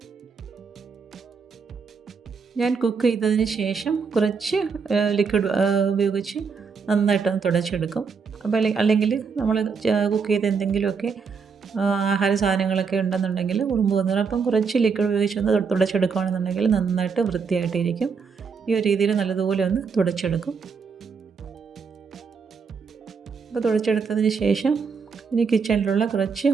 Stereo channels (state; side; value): quieter; left; 5.6 dB